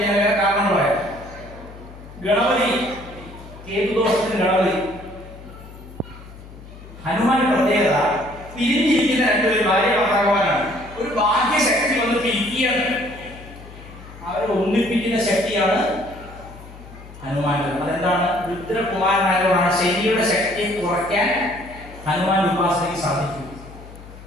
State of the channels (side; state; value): left; noise; hum, 17 dB below the sound